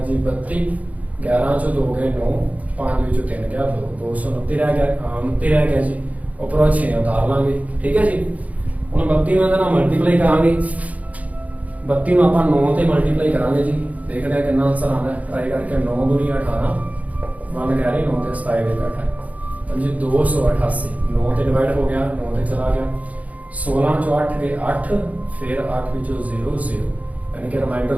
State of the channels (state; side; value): late; left; 0.071 ms